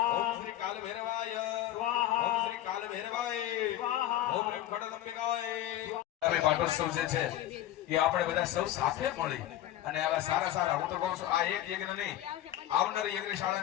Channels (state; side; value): quieter; right; 13.3 dB